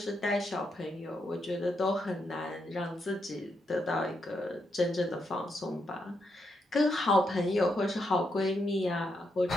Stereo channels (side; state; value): both; normal; correlation 0.81